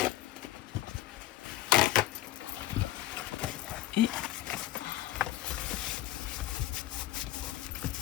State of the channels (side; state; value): right; quieter; 14.5 dB